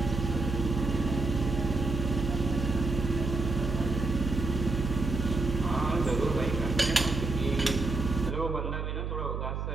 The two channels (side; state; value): right; noise; hum, 3 dB below the sound